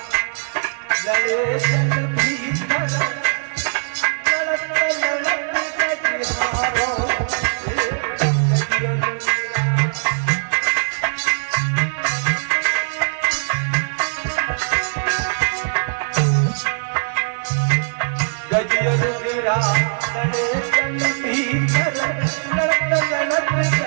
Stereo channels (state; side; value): silent; left; digital silence